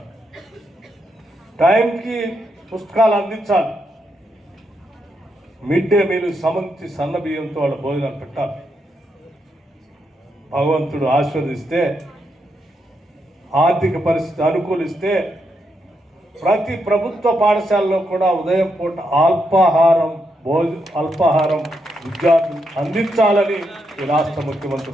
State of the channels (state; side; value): normal; both; correlation 0.81